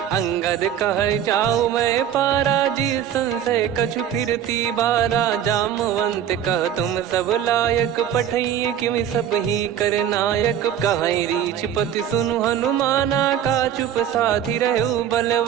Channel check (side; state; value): left; quieter; 9.8 dB